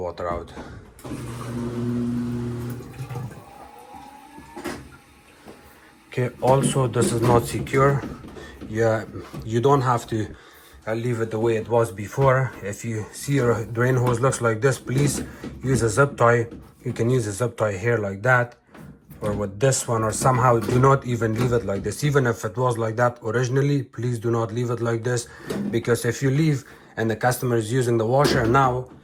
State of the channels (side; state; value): both; identical; correlation 1.00